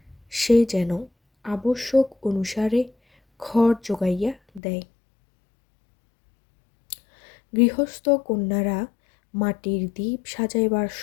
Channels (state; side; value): drops out; right; at 4.6 s